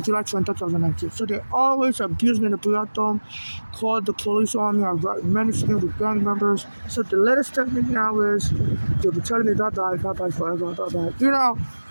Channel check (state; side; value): inverted; both; correlation -1.00